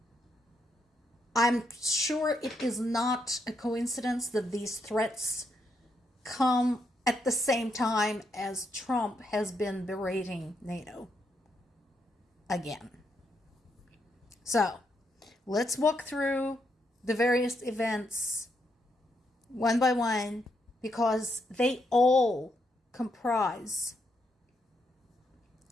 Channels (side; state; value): both; normal; correlation 0.78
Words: I'm sure it is not a coincidence that these threats come at the same time as Trump has been berating NATO again. So, let's walk through the various events one by one because they all comprise